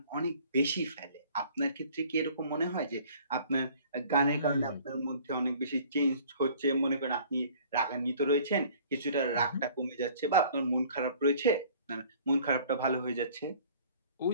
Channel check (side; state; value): both; inverted; correlation -0.52